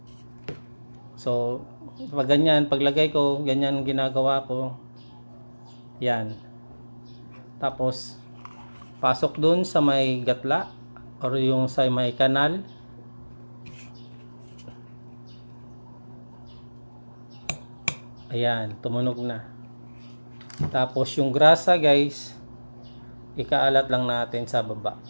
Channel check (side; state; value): both; inverted; correlation -1.00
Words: So pag ganyan, paglagay ko, ganyan ginagawa ko. Yan. Tapos pasok doon sa may gatla or yung sa may kanal. Ayan, tumunog na. Tapos yung grasa guys, ikaalat lang natin sa baba.